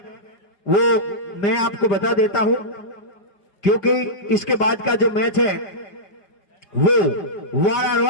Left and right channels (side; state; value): right; late; 5.4 ms